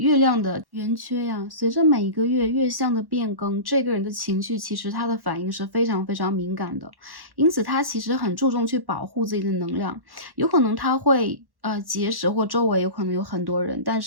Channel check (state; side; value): late; left; 1.1 ms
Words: 亮的圆缺呀，随着每一个月月相的变更，这个人的情绪其实他的反应是非常非常敏感的，因此他其实很注重去保护自己的能量，有可能他会结识或周围有可能有很多人，但